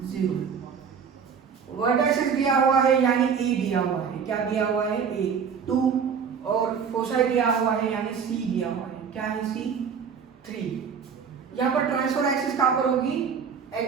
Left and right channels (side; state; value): left; quieter; 6.6 dB